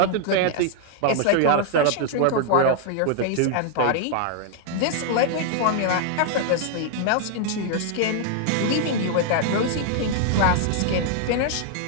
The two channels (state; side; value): different; both; correlation 0.00